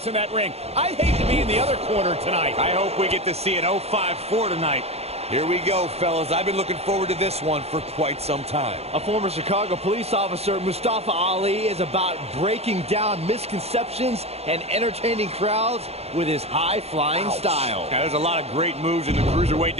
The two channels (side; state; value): left; late; 0.30 ms